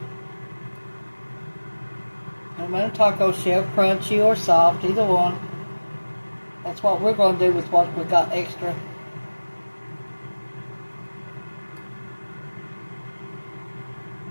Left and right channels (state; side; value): inverted; both; correlation -1.00